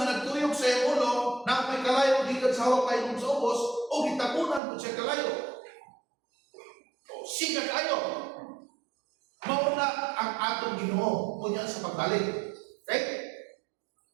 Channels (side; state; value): left; drops out; at 4.6 s